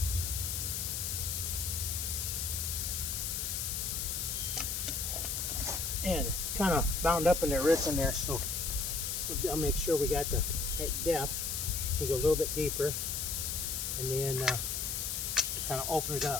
And kind of bound up in their roots in there, so I'll make sure we got the right depth. We go a little bit deeper, and then kind of open it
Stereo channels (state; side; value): noise; left; hiss, 1 dB below the sound